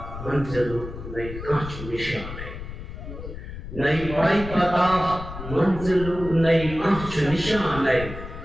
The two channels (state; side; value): noise; left; rumble, 10 dB below the sound